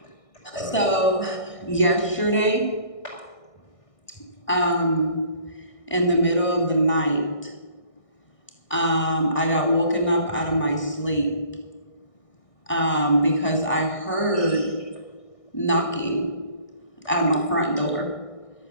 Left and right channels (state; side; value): late; right; 1.6 ms